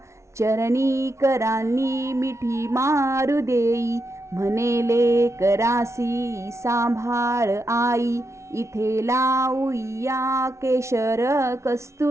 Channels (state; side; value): late; left; 0.13 ms